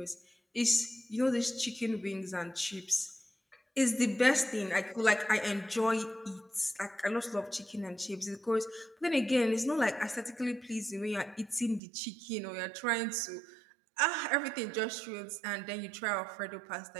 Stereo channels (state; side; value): drops out; left; at 11.8 s